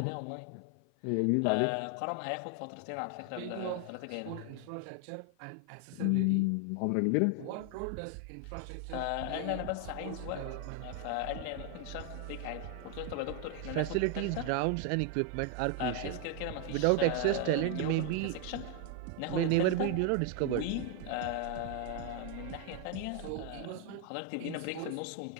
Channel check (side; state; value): both; different; correlation 0.00